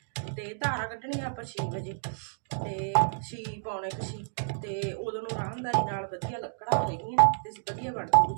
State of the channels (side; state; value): left; silent; digital silence